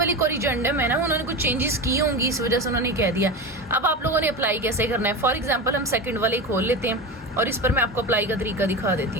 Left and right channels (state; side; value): normal; both; correlation 0.24